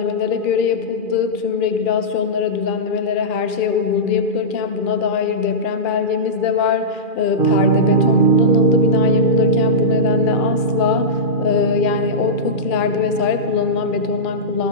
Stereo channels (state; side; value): late; right; 2.4 ms